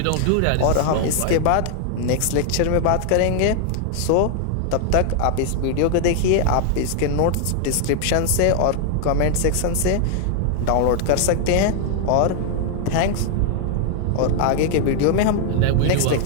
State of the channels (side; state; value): both; different; correlation 0.00